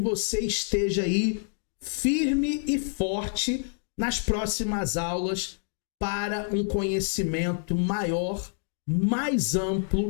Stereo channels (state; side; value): silent; right; 60 dB below the other